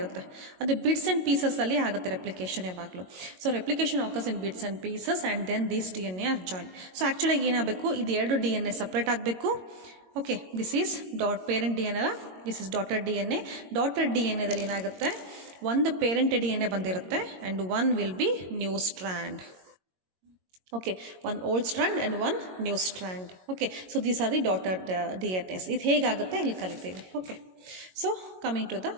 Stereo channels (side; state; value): left; late; 22 ms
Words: ಅದು ಬಿಡ್ಸ್ ಆ್ಯಂಡ್ ಪೀಸಸ್ಸಲ್ಲಿ ಆಗುತ್ತೆ ರೆಪ್ಲಿಕೇಶನ್ ಯಾವಾಗಲೂ. So replication occurs in bits and pieces and then these DNA are join. So ಆ್ಯಕ್ಚುಲಾಗಿ ಏನಾಗಬೇಕು, ಇದು 2 DNA ಸಪ್ರೇಟ್ ಆಗಬೇಕು. Okay, this is parent DNA ಅಲ್ಲ, this is daughter DNA. Daughter DNAದಲ್ಲಿ ಏನಾಗುತ್ತೆ, ಒಂದು ಪೇರೆಂಟ್ DNA ಬಂದಿರುತ್ತೆ and one will be new strand. Okay, one old strand and one new strand. Okay, so these are the daughter DNAs. ಇದು ಹೇಗಾಗುತ್ತೆ ಇಲ್ಲಿ ಕಲಿತೀವಿ. Okay, so coming to the